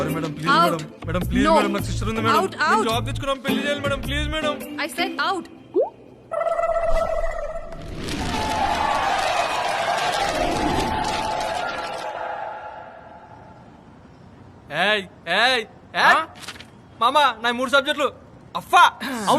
madam, please madam. Madam please madam, నాకు సిస్టర్ ఉంది మేడం. నేను జాబ్ తెచ్చుకున్నాం, పెళ్లి చేయాలి madam, please madam. I said out. ఏయ్ ఏయ్ ఏయ్ మామా, నా 3 సబ్జెక్టులు అఫ్ఫా.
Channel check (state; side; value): identical; both; correlation 1.00